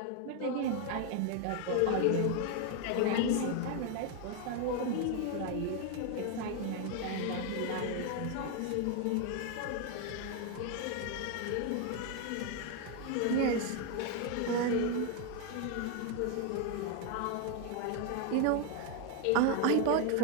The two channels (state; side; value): different; both; correlation 0.01